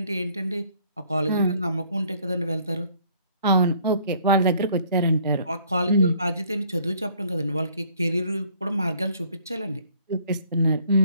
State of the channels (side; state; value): both; inverted; correlation -0.60